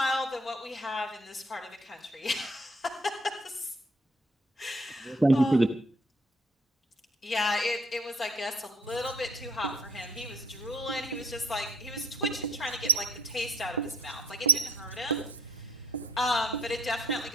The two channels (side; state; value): both; normal; correlation 0.56